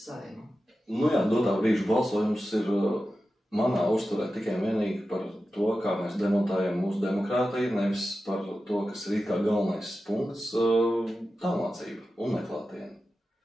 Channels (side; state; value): both; normal; correlation 0.93